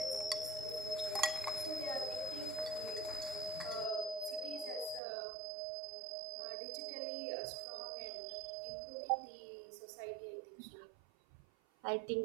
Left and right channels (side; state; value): left; drops out; at 5.0 s